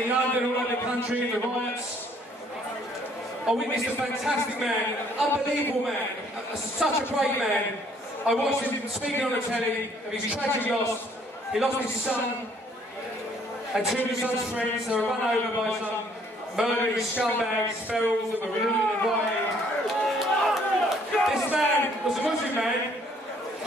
in London, all over the country, in the riots, I witnessed a fantastic man, an unbelievable man, such a great man. I watched him speaking on the telly of his tragic loss. He lost his son and two of his son's friends. They were run over by some murdering scumbags, ferals that were looting and rioting. This man was a Muslim man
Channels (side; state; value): both; normal; correlation 0.63